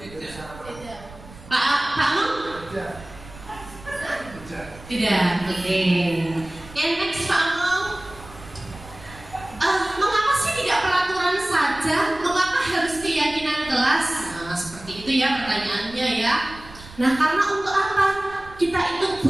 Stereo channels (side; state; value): right; noise; rumble, 18 dB below the sound